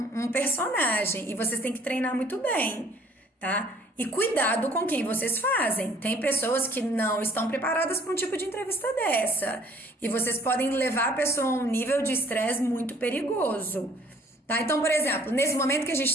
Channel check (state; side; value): normal; both; correlation 0.57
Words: personagem e vocês têm que treinar muito bem, tá? E cuidado com quem vocês fazem. Tem pessoas que não estão preparadas para um tipo de entrevista dessa. E vocês podem levar a pessoa a um nível de estresse muito perigoso. Tá? Então, por exemplo, nesse momento que a gente